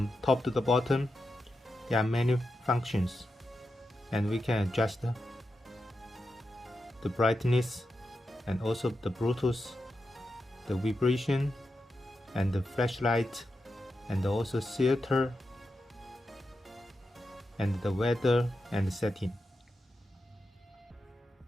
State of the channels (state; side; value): normal; both; correlation 0.88